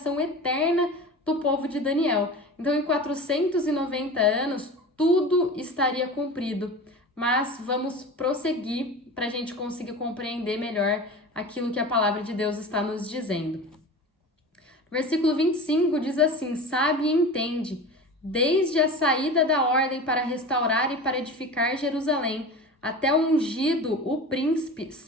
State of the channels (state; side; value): normal; both; correlation 0.33